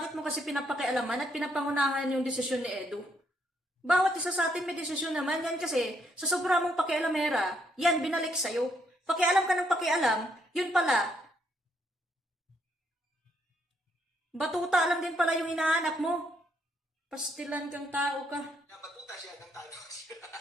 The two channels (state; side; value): normal; both; correlation 0.72